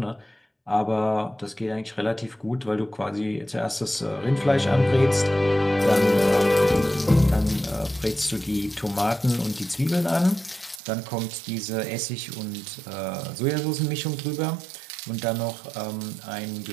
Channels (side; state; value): left; drops out; at 10.8 s